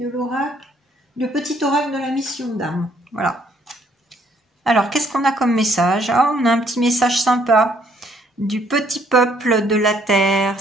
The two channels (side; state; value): both; normal; correlation 0.66